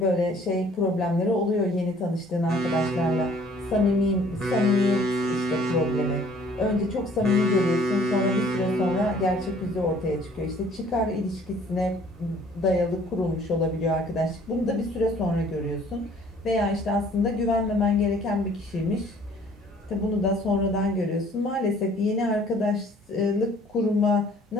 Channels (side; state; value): both; normal; correlation 0.56